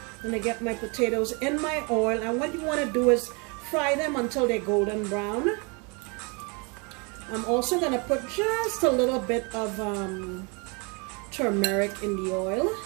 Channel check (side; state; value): left; quieter; 31.8 dB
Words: I'm gonna get my potatoes in my oil, and what you want to do is fry them until they're golden brown. I'm also gonna put just a little bit of turmeric in the oil,